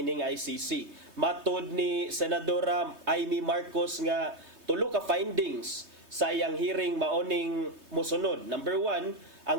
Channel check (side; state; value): left; late; 3.2 ms